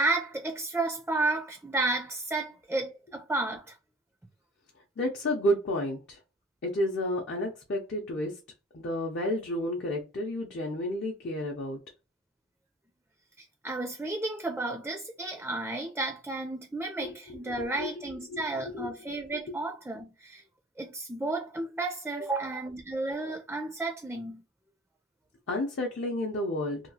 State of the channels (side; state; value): both; normal; correlation 0.46